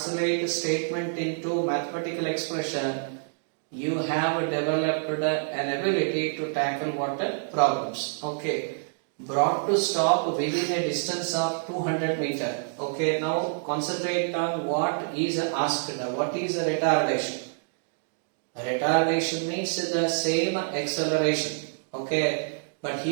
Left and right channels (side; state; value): left; silent; digital silence